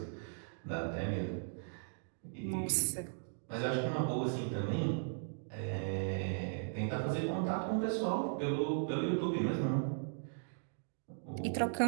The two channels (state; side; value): silent; left; digital silence